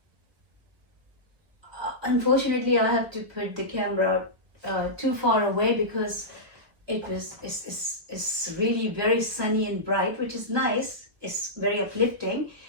Unfortunately, I have to put the camera too far away because it's really very sunny and bright, which is nice. It's very uplifting.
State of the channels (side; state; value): left; late; 1.0 ms